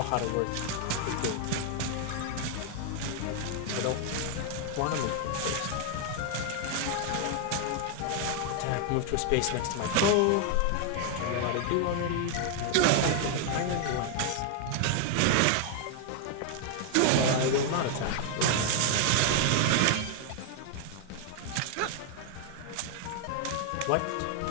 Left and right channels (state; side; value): different; both; correlation 0.00